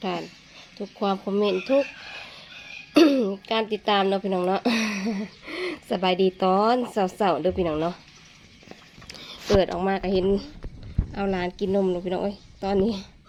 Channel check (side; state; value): both; identical; correlation 1.00